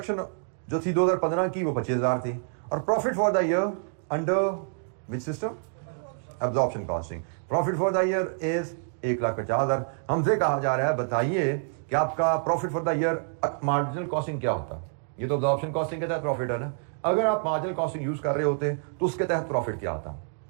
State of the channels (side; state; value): left; silent; digital silence